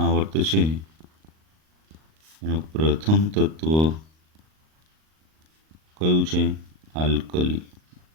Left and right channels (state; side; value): late; left; 38 ms